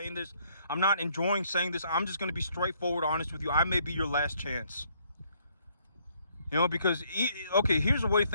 this. I'm not enjoying saying this. I'm just going to be straightforward honest with you. I may be your last chance. You know, because, okay, here's the way to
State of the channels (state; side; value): inverted; both; correlation -0.67